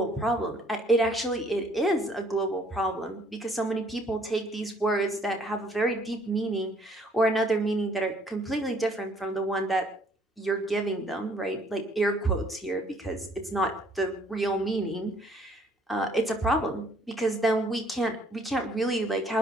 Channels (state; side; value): normal; both; correlation 0.61